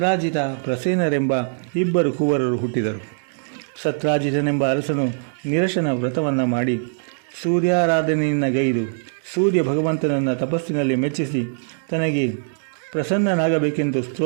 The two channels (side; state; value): left; silent; digital silence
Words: ಪ್ರಸೇನರೆಂಬ 2 ಕುವರರು ಹುಟ್ಟಿದರು. ಸತ್ರಾಜಿತನೆಂಬ ಅರಸನು ನಿರಶನ ವ್ರತವನ್ನು ಮಾಡಿ ಸೂರ್ಯಾರಾಧನೆಯನ್ನು ಗೈದು ಸೂರ್ಯ ಭಗವಂತನನ್ನು ತಪಸ್ಸಿನಲ್ಲಿ ಮೆಚ್ಚಿಸಿ ತನಗೆ ಪ್ರಸನ್ನನಾಗಬೇಕೆಂದು